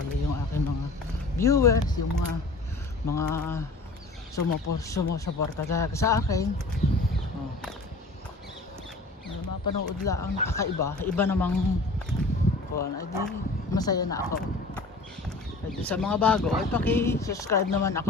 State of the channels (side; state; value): right; quieter; 3.2 dB